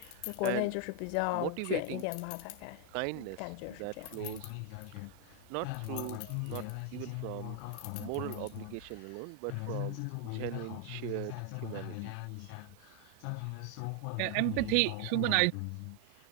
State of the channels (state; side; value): different; both; correlation 0.00